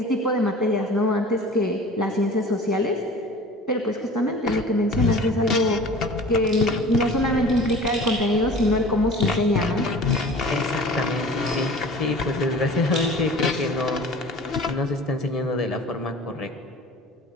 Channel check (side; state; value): both; normal; correlation 0.42